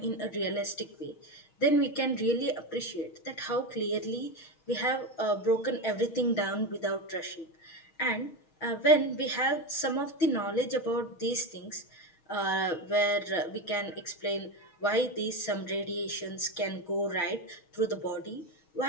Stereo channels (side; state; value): right; late; 6.3 ms